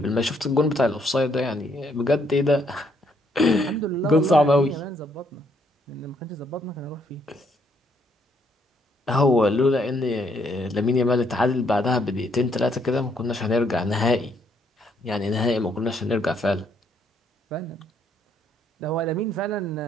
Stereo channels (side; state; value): both; normal; correlation 0.70